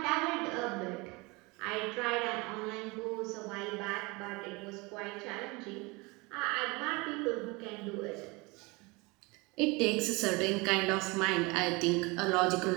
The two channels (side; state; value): left; quieter; 25.7 dB